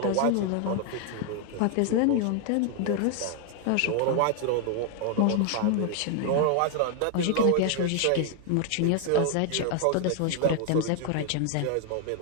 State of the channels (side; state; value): both; different; correlation 0.00